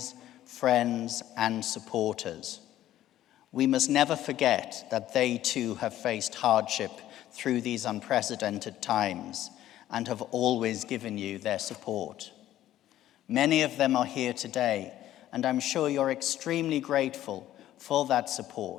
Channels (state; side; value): quieter; right; 13.2 dB